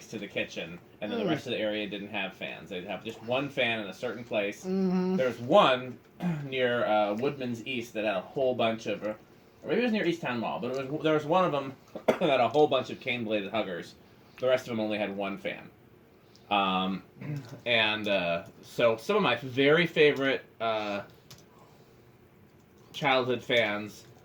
to the kitchen, and then the rest of the area didn't have fans. They'd have just one fan in a certain place. Mm-hmm. There's one near Woodman's East that had a whole bunch of, or maybe it was near Easttown Mall, but there was one of them that had a whole bunch of cane-bladed huggers. The rest of them only had one fan. So some of my very favorite childhood fans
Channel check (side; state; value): both; identical; correlation 1.00